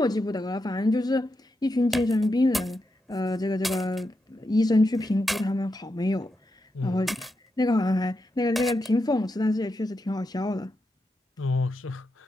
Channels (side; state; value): both; normal; correlation 0.86